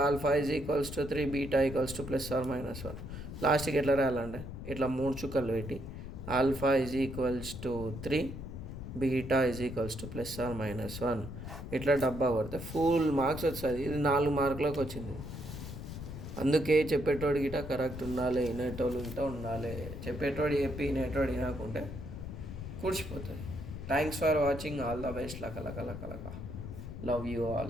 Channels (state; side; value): noise; left; rumble, 9 dB below the sound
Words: alpha is equals to 3, beta equals to +or-1. లాస్ట్కి ఎట్లా రాయాలంటే ఇట్లా 3 చుక్కలు పెట్టి alpha is equals to 3, beta is equals to +or-1. ఇట్లా డబ్బా కొడితే ఫుల్ మార్క్స్ వస్తుంది. ఇది 4 మార్కులకు వచ్చింది. అందుకే చెప్పేటోడు గిట కరెక్ట్ ఉండాలి, వినేటోళ్ళు గిట ఉండాలి. చెప్పేటోడు చెప్పి వినేటోడు వినకుంటే కూర్చిపోతుంది. Thanks for watching. All the best. లక లక లక లక. Love you